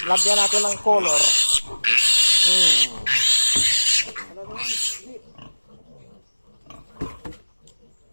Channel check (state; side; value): inverted; both; correlation -1.00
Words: lagyan natin ng color.